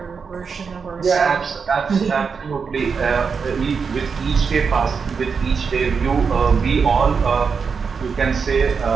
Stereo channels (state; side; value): quieter; left; 5.6 dB